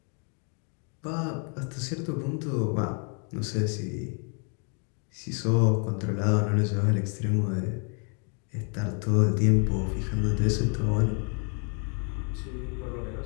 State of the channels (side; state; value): right; quieter; 39.5 dB